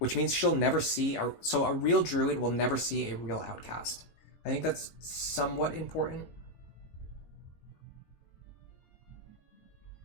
means she'll never see so a real druid will never see a real outcast. I think that's somewhat important.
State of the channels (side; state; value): right; late; 19 ms